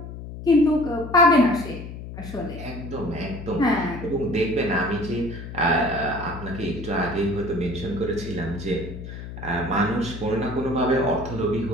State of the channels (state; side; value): noise; left; hum, 10 dB below the sound